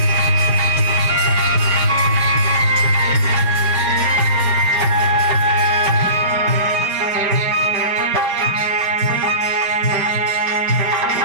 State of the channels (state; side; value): late; left; 5.1 ms